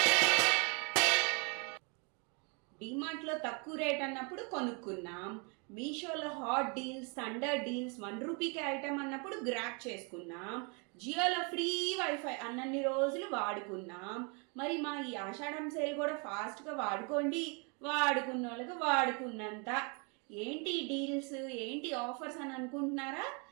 డిమార్ట్లో తక్కువ రేట్ అన్నప్పుడు కొనుక్కున్నాం, మీషోలో హాట్ డీల్స్, థండర్ డీల్స్, 1 రూపీకే ఐటమ్ అన్నప్పుడు గ్రాప్ చేసుకున్నాం, జియోలో ఫ్రీ వైఫై అన్నన్ని రోజులు వాడుకున్నాం. మరి మా ఈ ఆషాఢం సేల్ కూడా ఫాస్ట్గా వాడుకోండి, వాడుకున్న వాళ్ళకి వాడుకున్నంత. ఏంటి డీల్స్, ఏంటి ఆఫర్స్ అని అనుకుంటున్నారా?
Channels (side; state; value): left; quieter; 34.2 dB